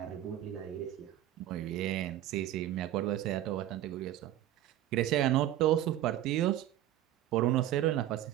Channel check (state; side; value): quieter; left; 12.9 dB